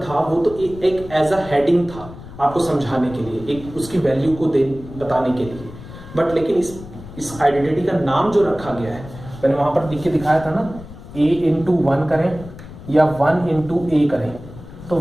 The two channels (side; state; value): left; noise; rumble, 15 dB below the sound